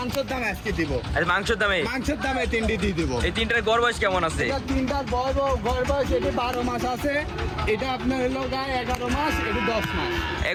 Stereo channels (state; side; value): identical; both; correlation 1.00